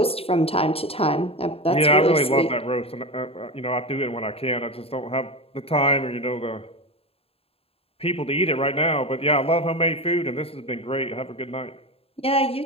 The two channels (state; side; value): late; right; 0.28 ms